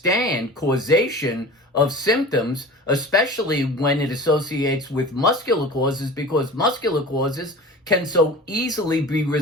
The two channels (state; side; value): normal; both; correlation 0.37